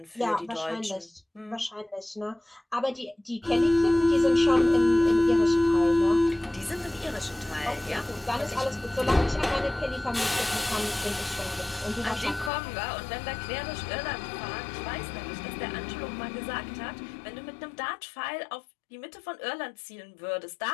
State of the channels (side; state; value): right; drops out; at 12.5 s